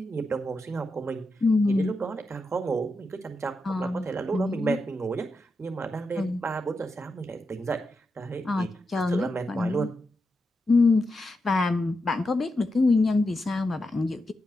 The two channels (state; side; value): normal; both; correlation 0.87